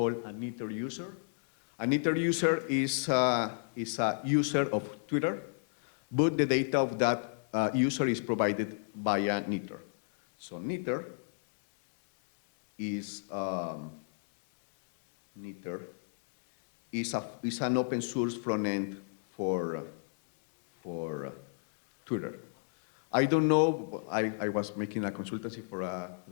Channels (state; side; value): silent; right; digital silence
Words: a knitter user. A knitter user is a user of Twitter, but the data of that user is provided by a knitter. So knitter is an open source front end for Twitter. I don't know, I was making a consultancy for a